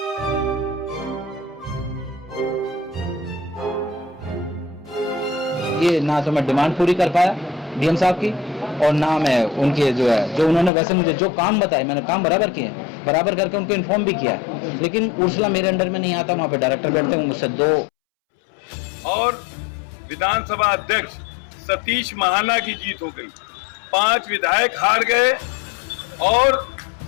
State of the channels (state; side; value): drops out; right; at 10.7 s